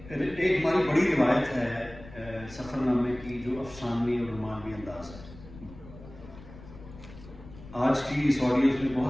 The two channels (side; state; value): left; noise; rumble, 17 dB below the sound